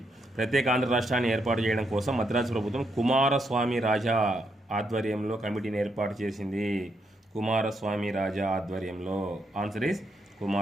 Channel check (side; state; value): both; normal; correlation 0.79